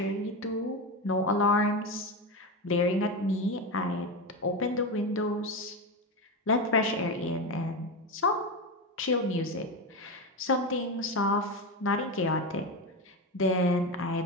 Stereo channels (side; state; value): both; normal; correlation 0.17